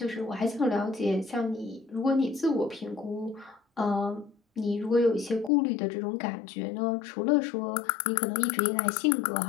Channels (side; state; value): right; drops out; at 5.5 s